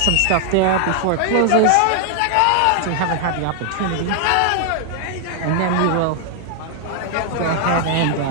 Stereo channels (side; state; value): both; different; correlation 0.00